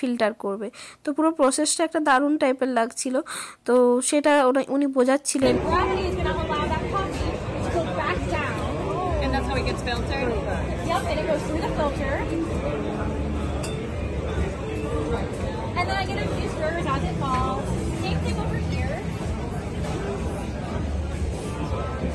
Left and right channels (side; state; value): both; identical; correlation 1.00